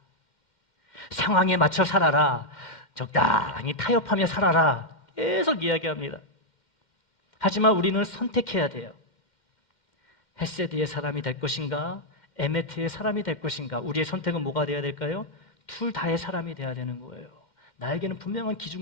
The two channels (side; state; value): right; late; 2.1 ms